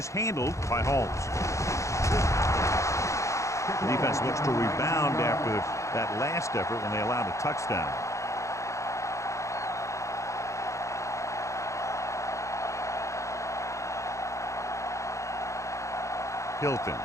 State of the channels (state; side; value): late; right; 0.15 ms